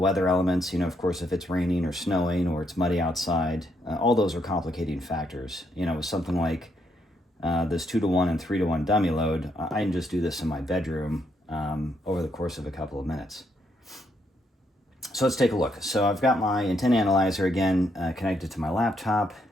elements, of course, if it's raining or snowing or it's muddy outside, all those are complicating factors. With something like this 2-to-1 and 3-to-1 dummy load, I can just do this in my bedroom over the course of a couple of minutes. So let's take a look. So I've got my antenna analyzer again connected to my laptop.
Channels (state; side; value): normal; both; correlation 0.76